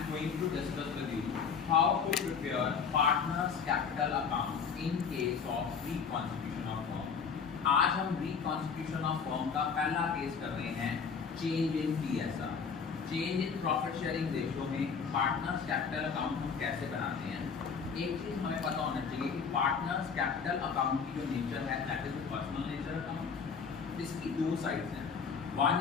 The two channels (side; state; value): right; quieter; 6.0 dB